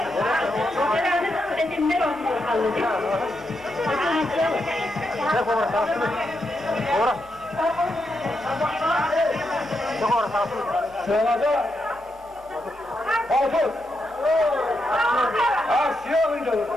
Sırada Altın. Siyah mıydı?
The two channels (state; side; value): normal; both; correlation 0.83